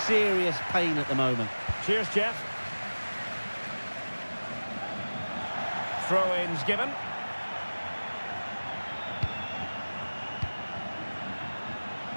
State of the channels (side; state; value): both; inverted; correlation -1.00